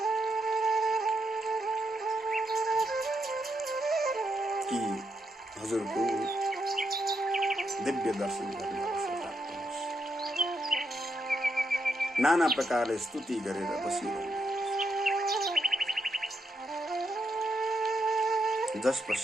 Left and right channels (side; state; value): both; normal; correlation 0.80